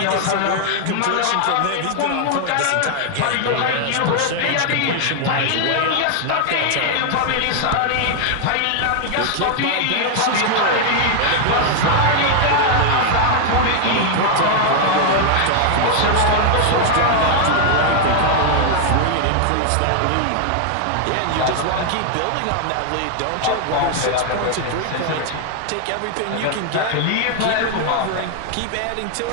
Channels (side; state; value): both; different; correlation 0.00